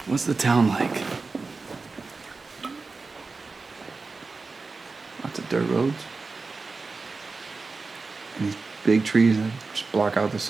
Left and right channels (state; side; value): quieter; left; 4.0 dB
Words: What's the town like? Lots of dirt roads. And these big trees that just block out the